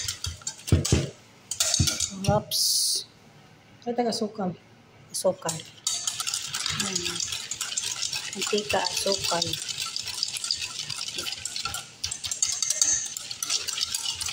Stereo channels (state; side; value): identical; both; correlation 1.00